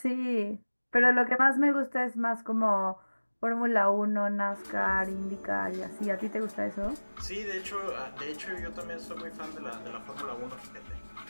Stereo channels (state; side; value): inverted; both; correlation -1.00